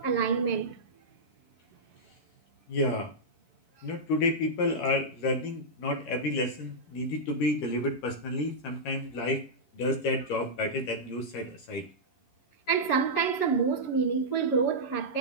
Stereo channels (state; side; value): late; right; 11 ms